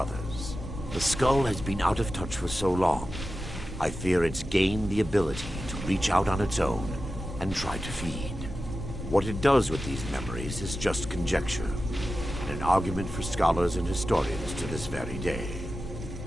The skull has been out of touch for so long, I fear it's gained the ability to reach out on its own and try to feed. What it does with these memories is just conjecture, and an argument for scholars and historians to this very day.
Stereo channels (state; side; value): normal; both; correlation 0.93